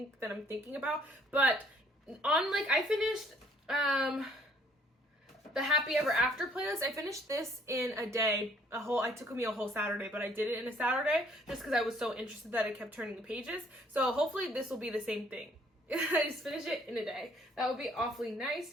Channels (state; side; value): normal; both; correlation 0.62